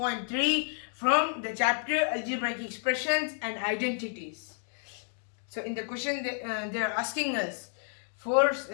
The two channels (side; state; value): right; silent; digital silence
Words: from the chapter Algebraic Expressions and Identities. So in the question they are asking us